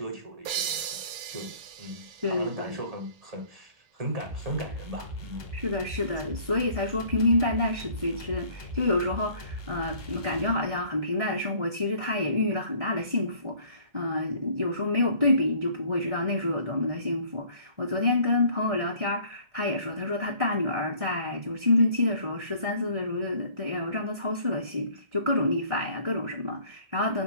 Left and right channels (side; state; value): left; late; 2.3 ms